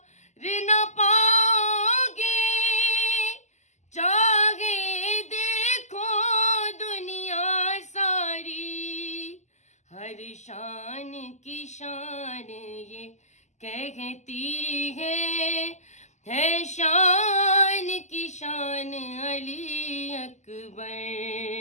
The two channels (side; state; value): right; late; 0.33 ms